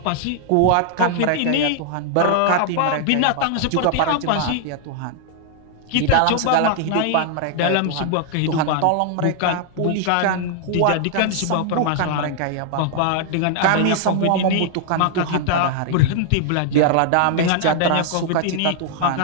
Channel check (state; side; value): different; both; correlation -0.01